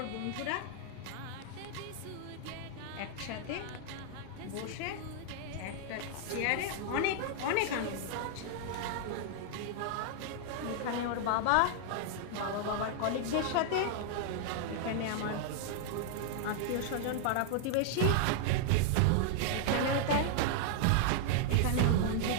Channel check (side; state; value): both; different; correlation 0.00